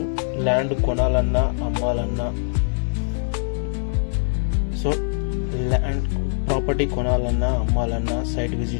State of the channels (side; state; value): right; silent; 64 dB below the other